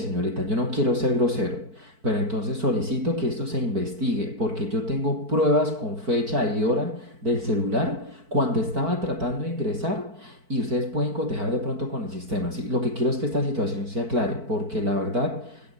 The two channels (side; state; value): left; late; 4.5 ms